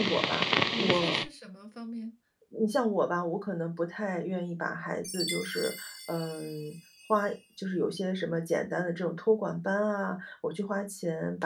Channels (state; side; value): identical; both; correlation 1.00